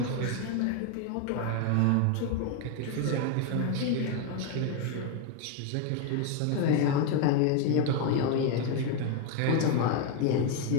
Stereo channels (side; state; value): both; different; correlation 0.01